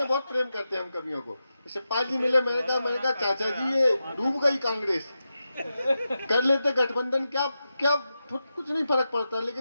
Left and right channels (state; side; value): inverted; both; correlation -0.90